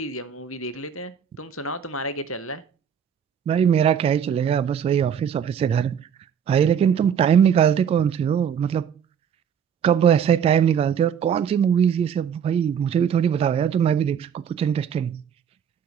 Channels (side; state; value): left; quieter; 8.0 dB